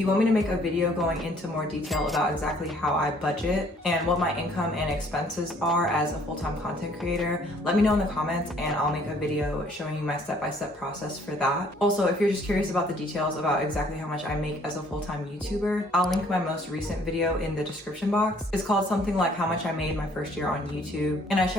want me to make a video going into more detail about exactly how I budget and what my income and expenses are as a full-time content creator, let me know in the comments and I'll make a video showing you my step-by-step process for that. Also, if you're just curious about the details about exactly how much I make as a full-time YouTuber, I'll link my most recent video in the description box. It's called something like how much I made my first year on YouTube, and I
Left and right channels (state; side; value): normal; both; correlation 0.60